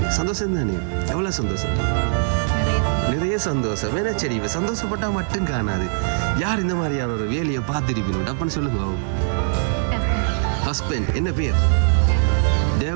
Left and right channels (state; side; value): silent; left; digital silence